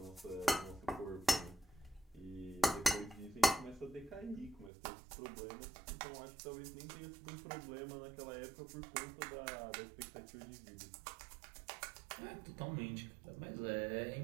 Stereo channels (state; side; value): drops out; left; at 4.7 s